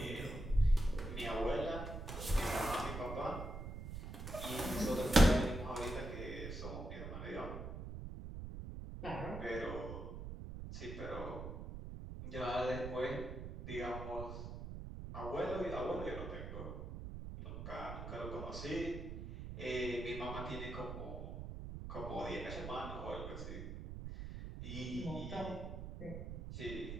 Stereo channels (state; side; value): noise; right; rumble, 7 dB below the sound